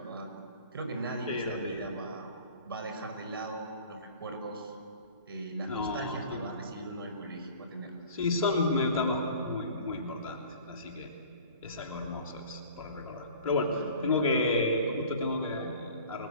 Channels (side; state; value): both; inverted; correlation -0.45